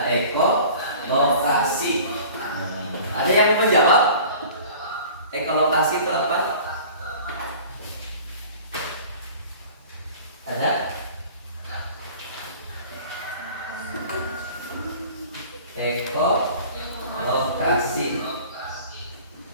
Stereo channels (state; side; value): inverted; both; correlation -0.44